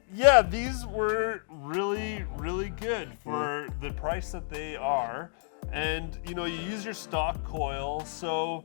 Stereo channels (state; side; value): silent; right; 58 dB below the other